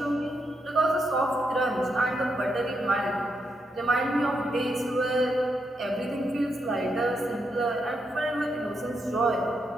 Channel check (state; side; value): normal; both; correlation 0.81